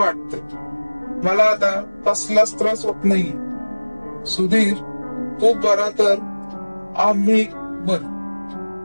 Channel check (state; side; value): inverted; both; correlation -1.00